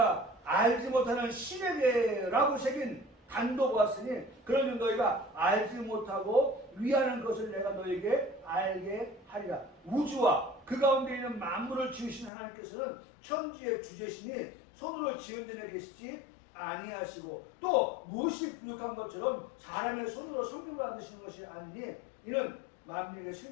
알지 못하는 신에 대해라고 새긴 단도 보았으니 그러면 너희가 알지 못하고 위하는 것을 내가 너희에게 알게 하리라. 우주와 그 가운데 있는 만물을 지으신 하나님께서는 천지의 주제시니 손으로 지은 데에 계시지 아니하시고 또 무엇이 부족한 것처럼 사람의 손으로 성경을 만드시는 것이 아니니 이는 만민의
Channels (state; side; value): drops out; right; at 12.3 s